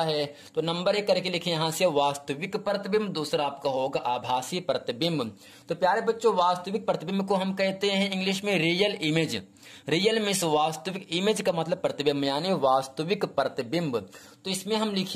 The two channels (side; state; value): both; identical; correlation 1.00